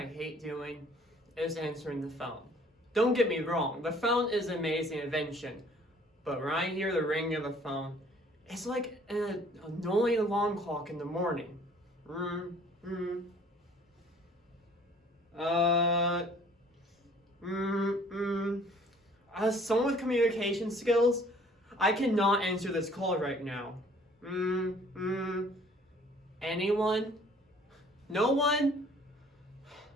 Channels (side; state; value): both; normal; correlation 0.55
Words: hate doing is answering the phone. Don't get me wrong, the phone is an amazing invention, but when I hear the ring of the phone, it's like an annoying alarm clock in the morning. As someone with communication skills, I cannot answer this call right now. Anyone? No one?